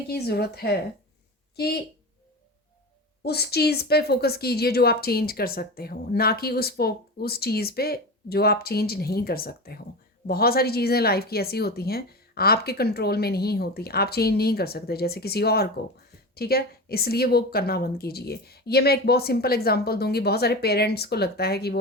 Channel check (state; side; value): normal; both; correlation 0.26